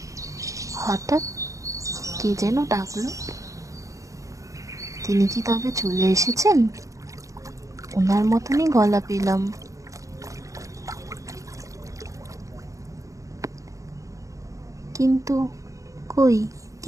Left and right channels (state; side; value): late; left; 0.16 ms